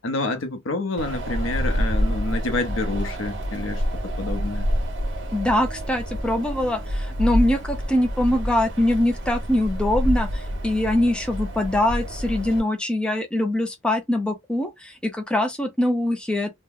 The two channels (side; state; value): both; normal; correlation 0.83